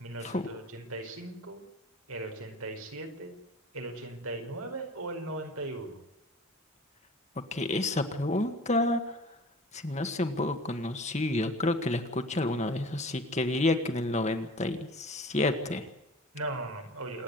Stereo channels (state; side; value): normal; both; correlation 0.42